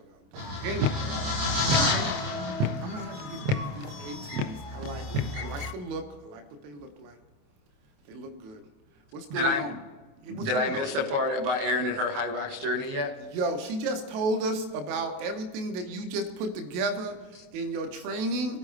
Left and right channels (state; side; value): late; left; 28 ms